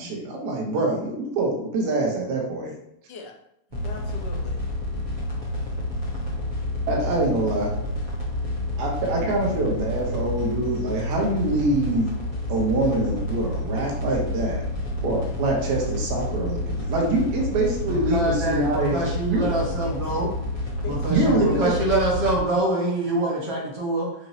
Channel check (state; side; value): late; left; 7.3 ms